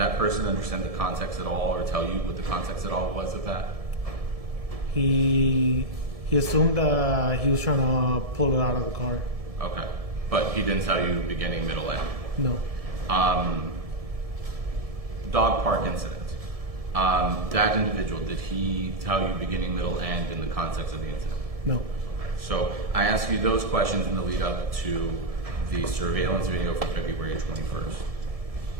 person understand the context at all, or tell you what the context at all was of that? He assumed that he was trying to pull it out of the car. Okay. But he didn't tell you beginning, middle, end? No. Dog park incident. That individual, did he tell you beginning, middle, end in the context of the incident? No. So I asked you those questions in the lead up to the surveillance video from February 21st.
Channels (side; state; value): left; late; 1.7 ms